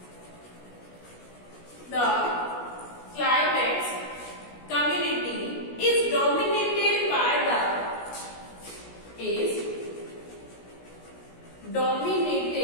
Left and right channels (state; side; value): late; right; 17 ms